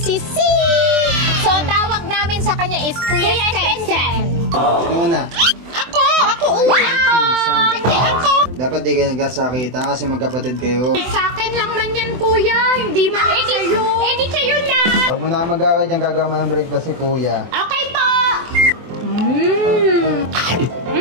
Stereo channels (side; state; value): left; late; 24 ms